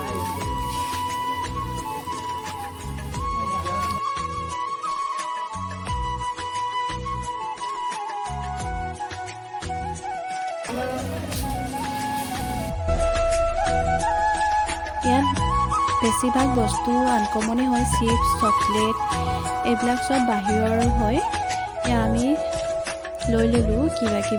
ইয়াত বেছিভাগ বস্তু আনকমনে হয়, চিপছ, চকলেট এইবিলাক চব বাহিৰৰ হয়। এয়া আমি লৈ ল'লোঁ কিবা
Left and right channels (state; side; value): identical; both; correlation 1.00